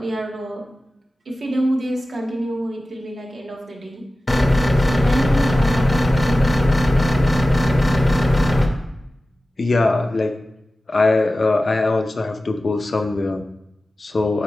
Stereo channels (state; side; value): normal; both; correlation 0.95